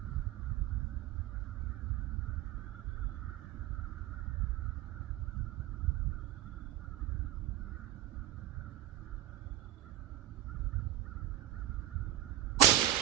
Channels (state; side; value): quieter; left; 13.6 dB